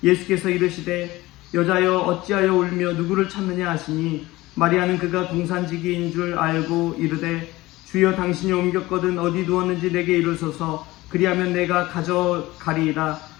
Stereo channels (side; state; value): right; quieter; 19.0 dB